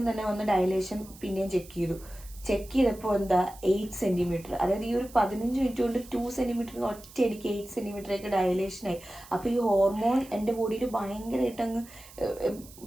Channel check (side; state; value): right; noise; hiss, 20 dB below the sound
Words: തന്നെ വന്ന് ഡയലേഷൻ പിന്നെയും ചെക്ക് ചെയ്തപ്പോ എന്താ 8 സെന്റിമീറ്റർ, അതായത് ഈ ഒരു 15 മിനിറ്റ് കൊണ്ട് 2 സെന്റിമീറ്റർ ഒറ്റയടിക്ക് 8 സെന്റിമീറ്ററൊക്കെ ഡയലേഷൻ ആയി. അപ്പൊ ഈ ഹോർമോൺ എൻ്റെ ബോഡിയിൽ ഭയങ്കരമായിട്ട് അങ്ങ്